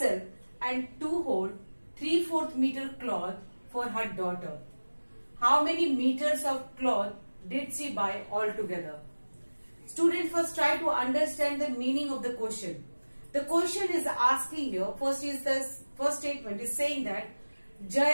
and 2 whole 3/4 meter cloth for her daughter. How many meters of cloth did she buy altogether? Students, first try to understand the meaning of the question. The question is asking here, first statement is saying that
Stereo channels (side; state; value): both; inverted; correlation -1.00